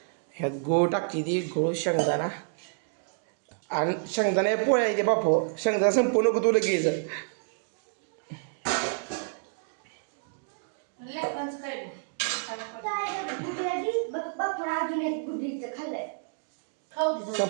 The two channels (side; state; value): left; silent; digital silence